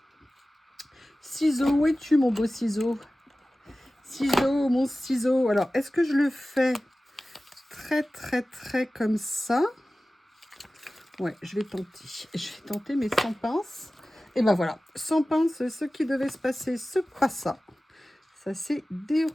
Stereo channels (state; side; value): normal; both; correlation 0.96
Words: Ciseau, où es-tu, mon beau ciseau? Ciseau, mon ciseau. Alors, est-ce que je le fais très comme ça? Ouais, je vais tenter. Je vais tenter, mais sans pince. Et ben voilà, sans pince, ce qui devait se passer se passa. Ça s'est